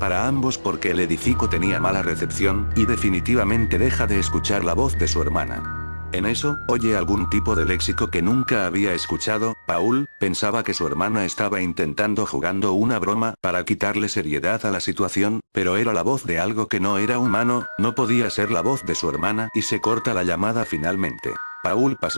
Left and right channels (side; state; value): both; inverted; correlation -1.00